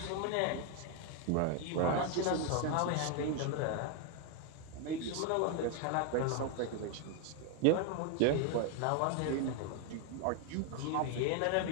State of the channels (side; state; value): both; different; correlation 0.01